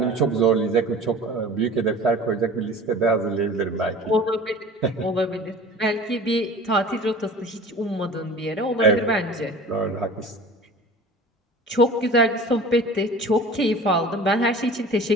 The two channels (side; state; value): both; normal; correlation 0.41